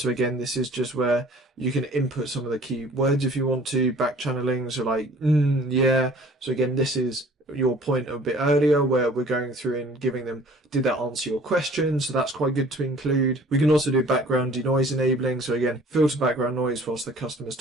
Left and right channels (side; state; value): both; normal; correlation 0.51